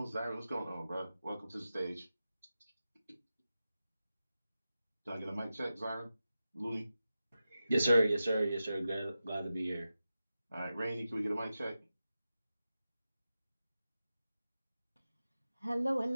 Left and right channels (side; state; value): both; inverted; correlation -0.93